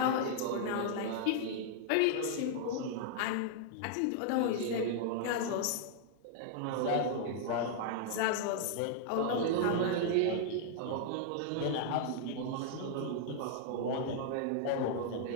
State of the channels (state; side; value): different; both; correlation -0.01